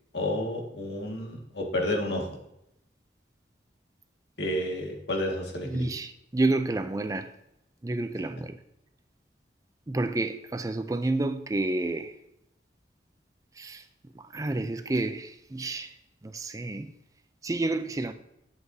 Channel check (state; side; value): normal; both; correlation 0.64